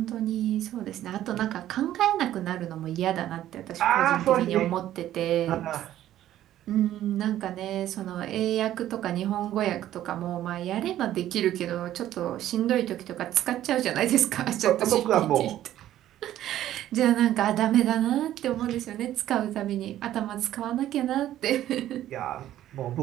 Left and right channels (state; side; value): quieter; left; 12.7 dB